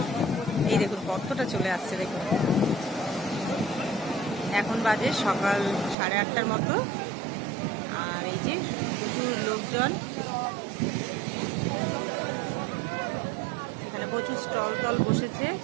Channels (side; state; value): left; drops out; at 6.0 s